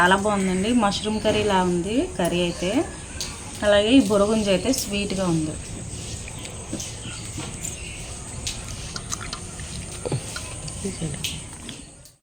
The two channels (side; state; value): both; identical; correlation 1.00